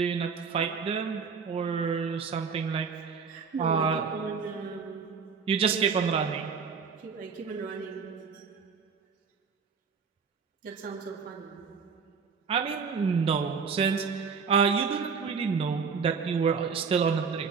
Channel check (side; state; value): left; quieter; 5.7 dB